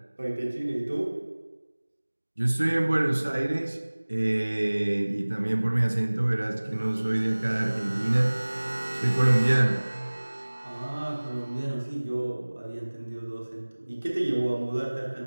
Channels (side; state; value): both; inverted; correlation -1.00